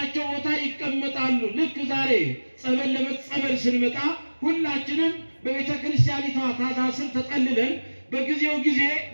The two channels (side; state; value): both; inverted; correlation -1.00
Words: ቦታ ይቀመጣሉ። ልክ ዛሬ ጸበል ለመጸበል ስንመጣ ሁላችንም በቤተ ክርስቲያኒቷ ታዛ ስር ተጠልለን በጊዜው ጊዜ